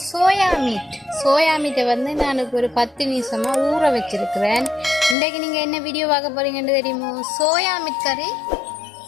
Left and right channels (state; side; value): drops out; right; at 5.2 s